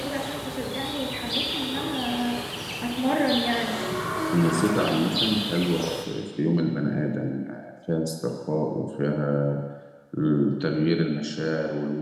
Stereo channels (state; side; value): identical; both; correlation 1.00